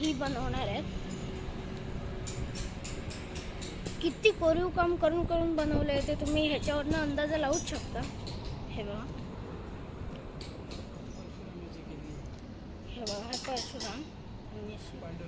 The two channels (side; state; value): both; identical; correlation 1.00